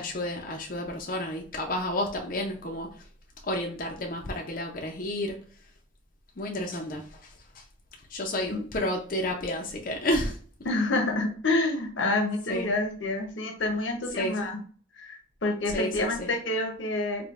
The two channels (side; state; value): both; normal; correlation 0.27